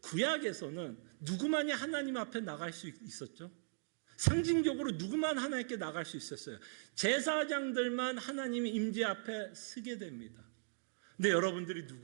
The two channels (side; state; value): left; silent; digital silence